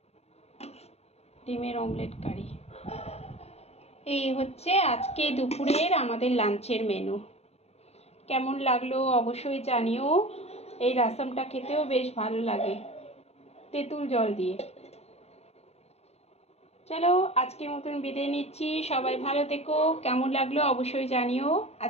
ডিমের অমলেট কারি। এই হচ্ছে আজকে দুপুরের আমাদের লাঞ্চের মেনু। কেমন লাগলো অবশ্যই জানিও। এই রাসমটা খেতেও বেশ ভালো লাগে তেঁতুল জল দিয়ে। চলো আজকের মতন বিদায় নিচ্ছি, সবাই ভালো থেকো। কেমন লাগলো অবশ্যই জানিও।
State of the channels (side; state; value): right; late; 0.31 ms